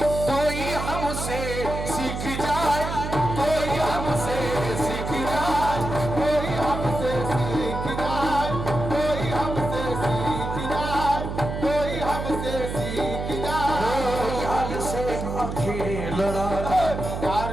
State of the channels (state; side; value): noise; right; hum, 5 dB below the sound